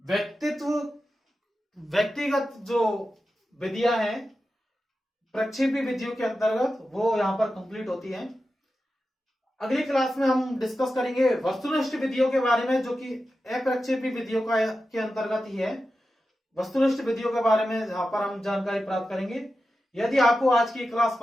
व्यक्तिगत जो विधियां हैं प्रक्षेपी विधियों के अंतर्गत, वो यहां पर कंप्लीट होती हैं। अगली क्लास में हम डिस्कस करेंगे वस्तुनिष्ठ विधियों के बारे में, जो कि अप्रक्षेपी विधियों का के अंतर्गत ही है। वस्तुनिष्ठ विधियों के बारे में यहां पर हम जानकारी प्राप्त करेंगे। यदि आपको आज की क्लास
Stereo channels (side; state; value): both; normal; correlation 0.92